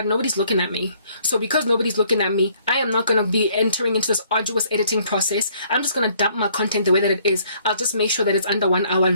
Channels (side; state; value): both; inverted; correlation -0.63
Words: nobody's looking at me. So because nobody's looking at me, I am not going to be entering into this arduous editing process. I'm just going to dump my content the way that it is. I'll just make sure that it's under 1 hour